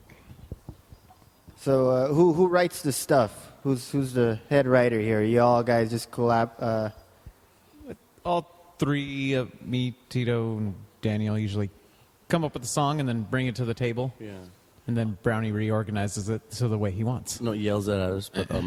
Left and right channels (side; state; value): both; identical; correlation 1.00